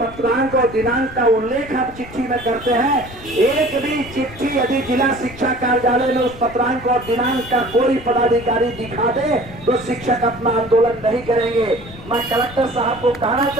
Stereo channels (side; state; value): left; noise; rumble, 17 dB below the sound